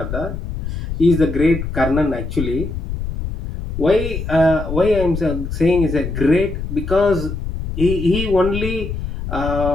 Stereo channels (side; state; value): left; noise; rumble, 5 dB below the sound